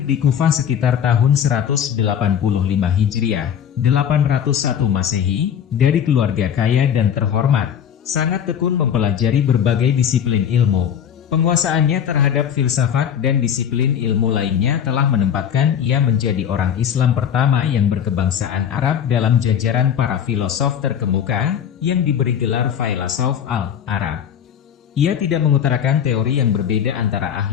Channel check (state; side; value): quieter; right; 8.7 dB